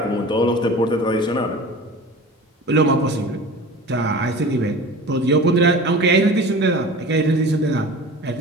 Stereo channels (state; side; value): normal; both; correlation 0.37